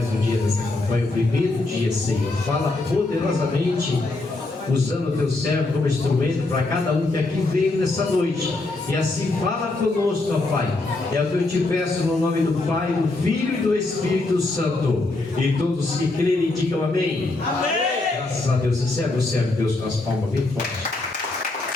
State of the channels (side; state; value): right; quieter; 3.1 dB